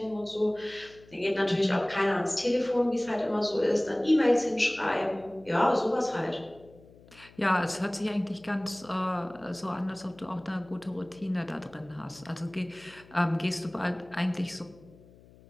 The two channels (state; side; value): noise; left; hum, 24 dB below the sound